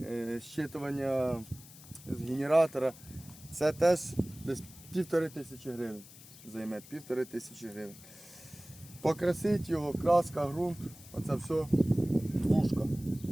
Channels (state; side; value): noise; left; hiss, 19 dB below the sound